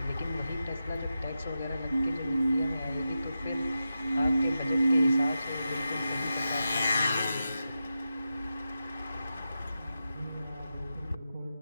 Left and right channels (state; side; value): inverted; both; correlation -0.90